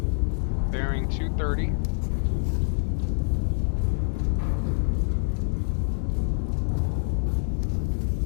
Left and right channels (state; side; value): silent; right; 61 dB below the other